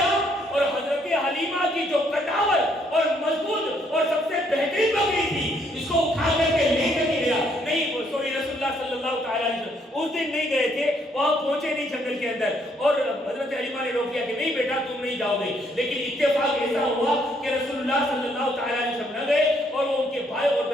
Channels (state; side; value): normal; both; correlation 0.70